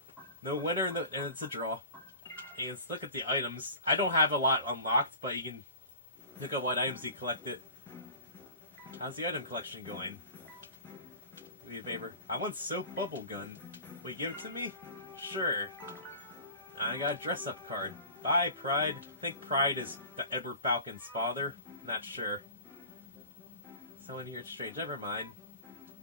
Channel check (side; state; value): both; inverted; correlation -0.39